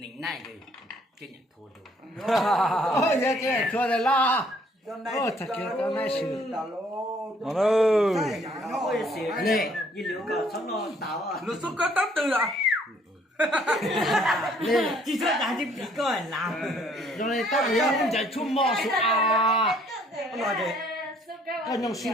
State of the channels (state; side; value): normal; both; correlation 0.62